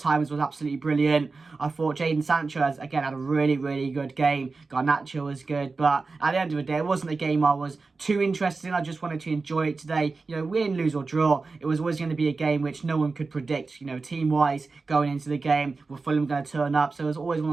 was absolutely brilliant. I thought Jadon Sancho, again, had a really, really good game. Garnacho was good. But at the end of the day, it wasn't a game I was too interested in. I just wanted to enjoy it today. Win, lose or draw. It was always going to be a game which no one could predict, team-wise going into the game. Were Fulham going to turn up? So it was always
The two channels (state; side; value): quieter; left; 4.0 dB